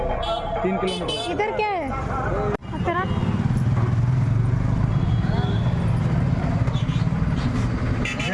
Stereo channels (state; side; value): identical; both; correlation 1.00